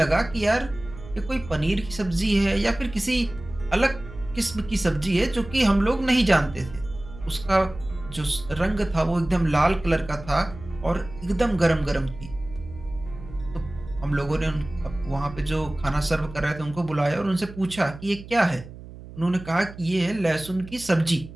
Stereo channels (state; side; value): noise; right; hum, 15 dB below the sound